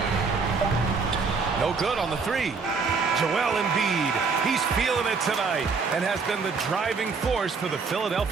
No good on the 3. Joel Embiid, he's feeling it tonight and has been the driving force for the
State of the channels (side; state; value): left; quieter; 4.9 dB